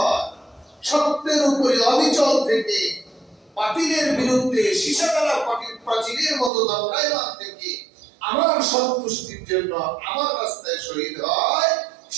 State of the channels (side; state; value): left; drops out; at 6.5 s